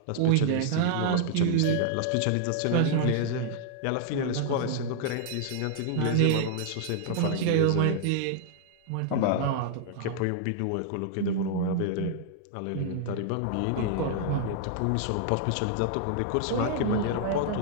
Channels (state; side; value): different; both; correlation -0.01